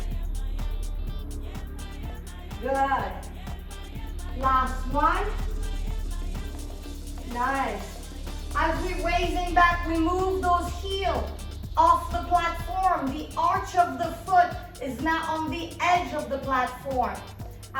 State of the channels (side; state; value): both; identical; correlation 1.00